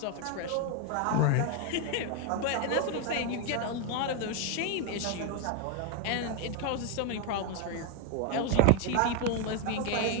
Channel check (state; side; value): different; both; correlation 0.01